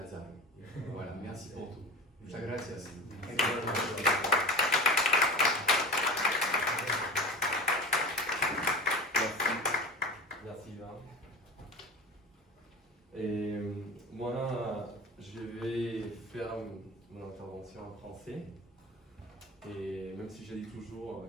Voilà, merci pour tout. Muchas gracias. Merci Ivan. Et moi, je vais faire mon intervention en français. Et même si je dis toujours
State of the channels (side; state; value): both; normal; correlation 0.34